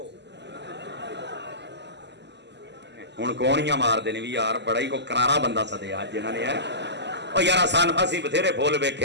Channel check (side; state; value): left; late; 0.50 ms